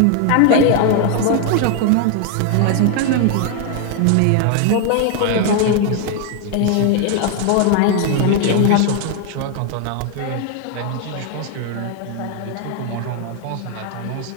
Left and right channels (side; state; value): both; different; correlation 0.01